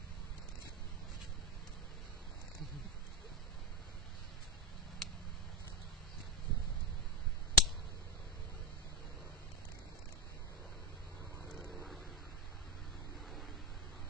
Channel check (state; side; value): normal; both; correlation 0.08